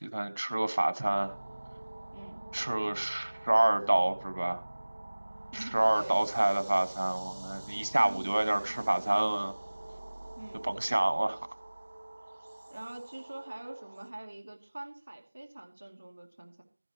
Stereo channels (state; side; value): inverted; both; correlation -1.00